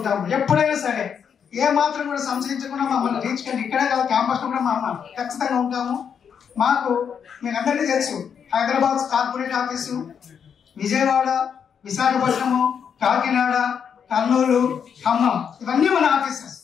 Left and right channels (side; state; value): right; quieter; 7.4 dB